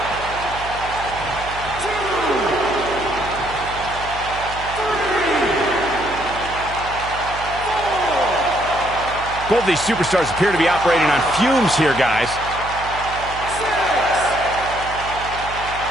Both these superstars appear to be operating on fumes here, guys.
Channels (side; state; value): right; noise; hum, 13 dB below the sound